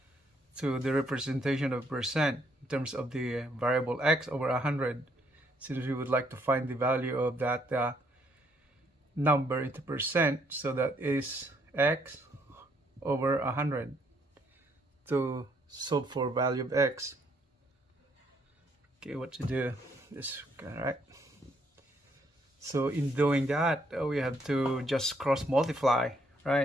to the representation of percent in terms of the variable x over 100, since we would like to find the value of that number into percent. So that is x over 100 to solve for value of x. Okay, what to do is, all right. So in doing that, we have to just cross multiply,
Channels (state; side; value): normal; both; correlation 0.70